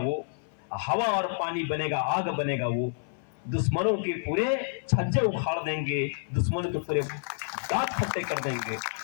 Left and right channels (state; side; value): silent; right; 59 dB below the other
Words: हवा और पानी बनेगा, आग बनेगा वो, दुश्मनों के पूरे छज्जे उखाड़ देंगे, दुश्मनों के पूरे दांत खट्टे कर देंगे।